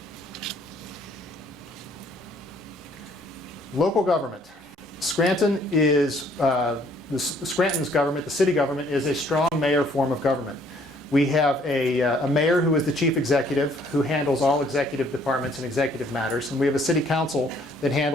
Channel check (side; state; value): both; normal; correlation 0.62